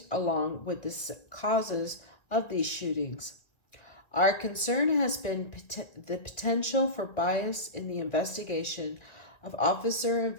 along with the causes of these shootings. Our concern has been the potential for bias in the investigation of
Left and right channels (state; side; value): late; right; 1.9 ms